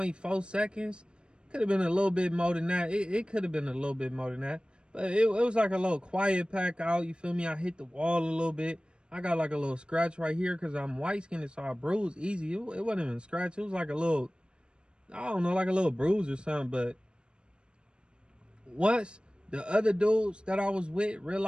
seconds. Could have been a little bit more than that. It could have been a little bit more than that. But it was like a little quiet pack out. You feel me? I hit the wall a little bit. I got like a little scratch right here because I'm white skinned, so I bruised easy. It wasn't even a scratch. It was like a little, I don't know, like a little bruise or something. But once the other dudes that I was with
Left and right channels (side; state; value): left; late; 0.054 ms